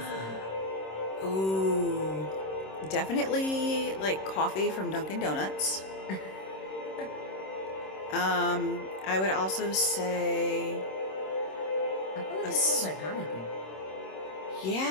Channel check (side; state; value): right; late; 26 ms